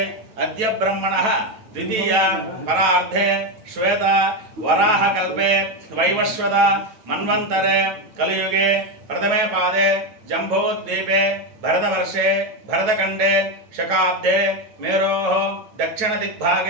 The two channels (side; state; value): left; late; 9.2 ms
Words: अद्य ब्रह्मणः द्वितीय परार्धे श्वेत वराह कल्पे वैवस्वत मन्वन्तरे कलियुगे प्रथमे पादे जम्बूद्वीपे भरतवर्षे भरतखण्डे शकाब्दे मेरोः